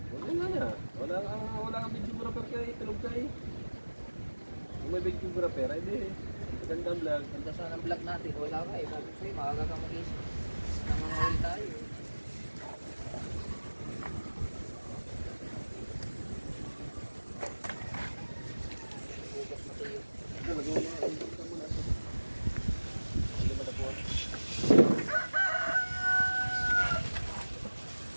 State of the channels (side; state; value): both; inverted; correlation -1.00